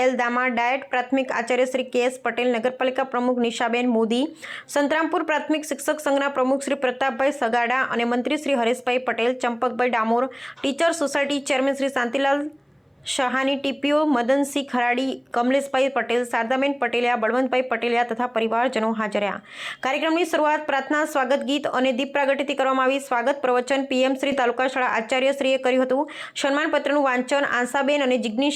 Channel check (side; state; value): both; identical; correlation 1.00